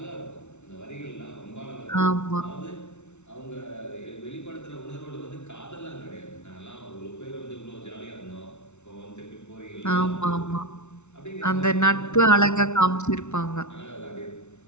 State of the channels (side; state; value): right; late; 0.82 ms